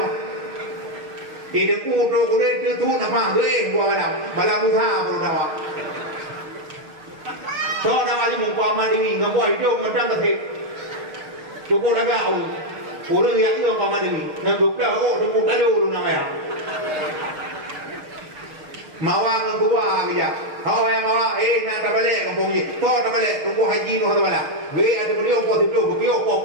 mah ini ku truk dia tu nama gue gua malam utha baru dah so dah ali mung paman ini ngabuai hidup macam tu cukup lagak orang yang itu paman ini ngaguk dah tunggu kalu lu namanya mawa ngagua dia hawa yang mawa nak balik kampung ni to tak balik tunggu haji nu ada balik we ada beliau ko tu beliau ko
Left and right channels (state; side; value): late; left; 6.5 ms